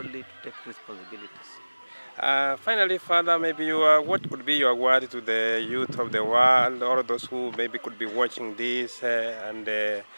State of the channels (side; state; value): both; inverted; correlation -1.00